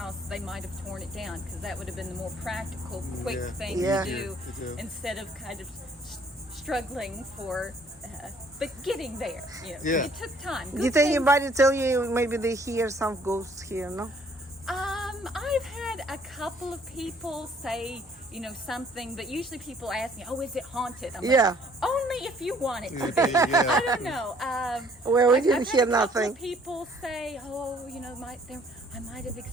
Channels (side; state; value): both; normal; correlation 0.60